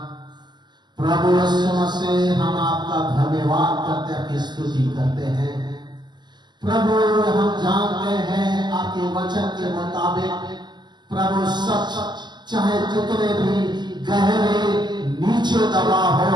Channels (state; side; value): late; left; 0.21 ms